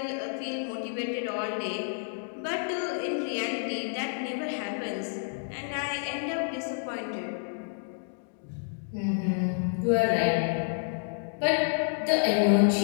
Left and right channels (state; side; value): silent; right; digital silence